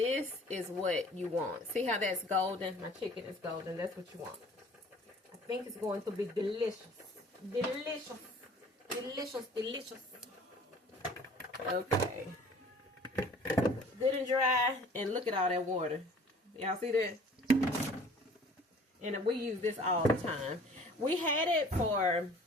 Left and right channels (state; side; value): normal; both; correlation 0.50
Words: is what you want. See how that's golden? My chicken is golden. That's what you want. I think it's going to be delicious. Delicious. Delicious. Delicious. Okay. Good and dry. And look at all that water. Y'all see that? And we use this all the time. We had it for